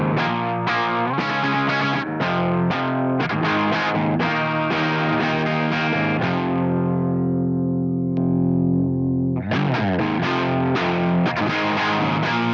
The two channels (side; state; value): both; identical; correlation 1.00